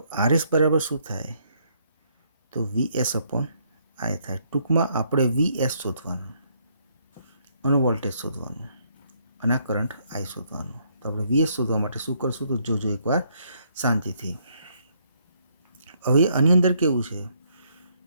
RS બરાબર શું થાય? તો VS upon I થાય. ટૂંકમાં આપણે VS શોધવાનું અને વોલ્ટેજ શોધવાનું અને આ કરંટ I શોધવાનું. તો આપણે VS શોધવા માટે શું કરશું? તો જોજો એકવાર શાંતિથી. હવે આની અંદર કેવું છે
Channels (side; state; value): both; inverted; correlation -0.71